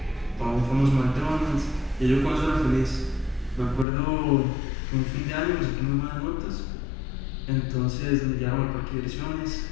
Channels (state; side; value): drops out; right; at 3.9 s